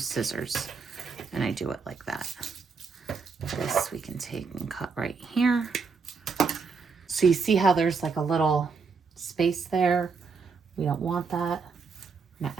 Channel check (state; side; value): quieter; left; 5.0 dB